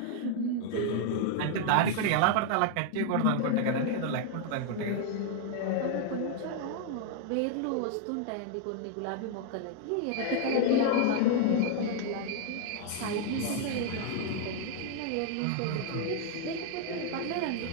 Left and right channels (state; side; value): different; both; correlation 0.00